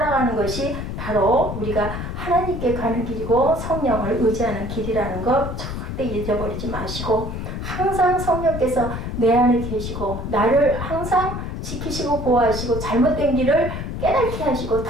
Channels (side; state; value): left; noise; rumble, 6 dB below the sound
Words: 것이 바로 우리가 하나님께 가는 길이고 성령을 의지하는 길이라는 것 절대 잊어버리지 마시고 항상 성령께서 내 안에 계시고 나를 항상 지키시고 보호하시고 잘못된 길을 깨닫게 하시고